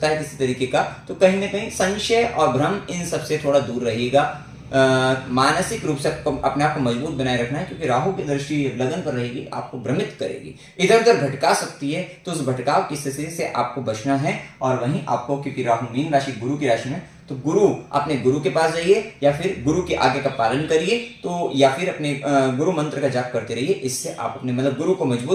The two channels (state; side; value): identical; both; correlation 1.00